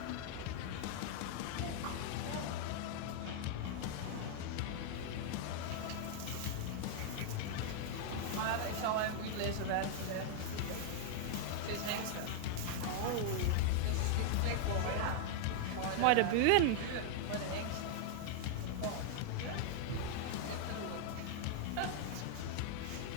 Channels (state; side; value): different; both; correlation 0.00